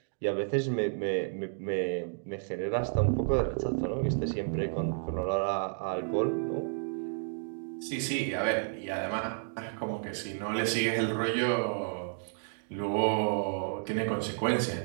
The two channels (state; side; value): silent; left; digital silence